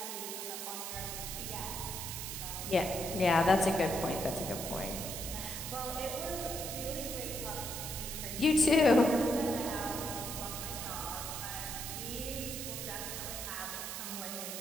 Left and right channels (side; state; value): right; noise; hiss, 5 dB below the sound